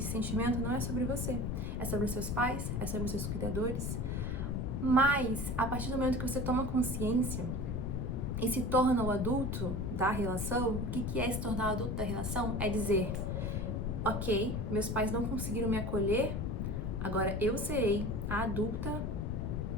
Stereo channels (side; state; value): left; noise; rumble, 1 dB below the sound